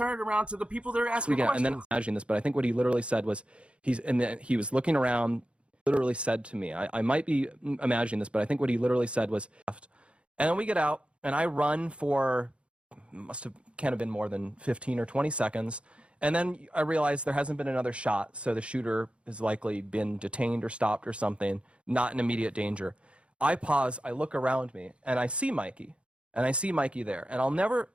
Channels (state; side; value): late; left; 0.059 ms